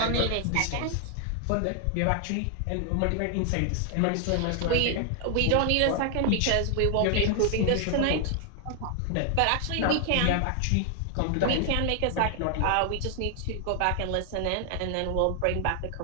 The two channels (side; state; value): both; different; correlation 0.00